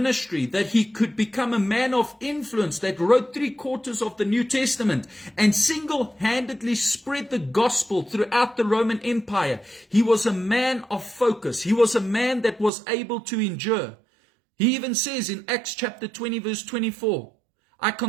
that he could become a man of influence that wrote 3/4 of the New Testament and single-handedly spread the gospel throughout the Roman Empire. He was a man of focus. He was a man that was able to endure. He even says in Acts chapter 20, verse 24, I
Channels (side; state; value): left; drops out; at 12.7 s